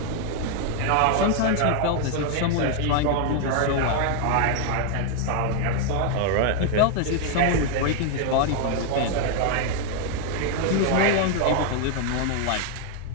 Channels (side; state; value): both; different; correlation 0.00